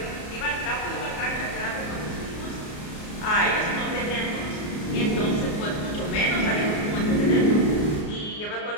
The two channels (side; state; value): right; late; 33 ms